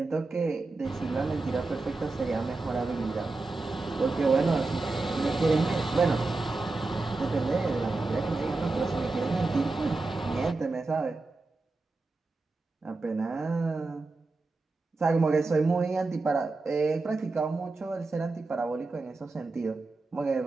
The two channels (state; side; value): quieter; left; 3.5 dB